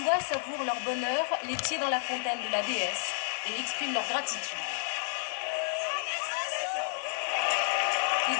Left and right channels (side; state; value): right; silent; 57 dB below the other